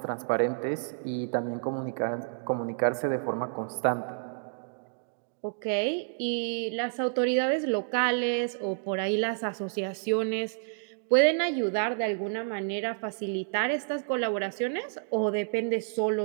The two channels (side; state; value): left; silent; digital silence